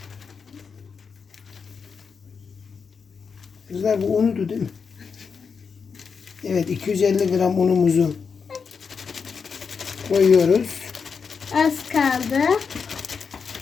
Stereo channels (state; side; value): quieter; right; 5.8 dB